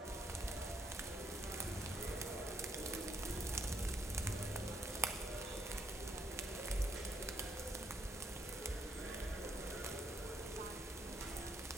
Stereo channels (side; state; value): both; normal; correlation 0.73